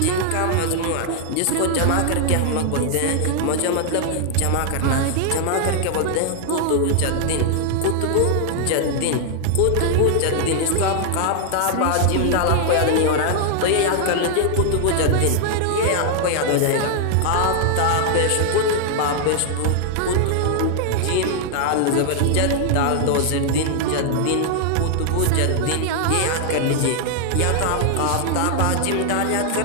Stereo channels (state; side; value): different; both; correlation 0.00